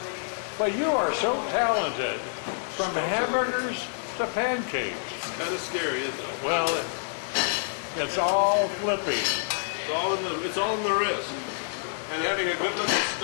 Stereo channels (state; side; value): silent; right; digital silence